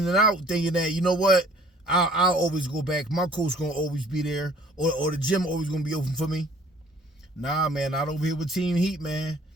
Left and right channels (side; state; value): both; normal; correlation 0.55